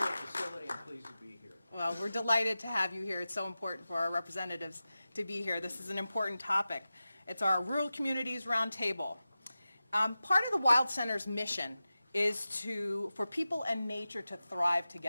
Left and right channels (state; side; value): inverted; both; correlation -0.94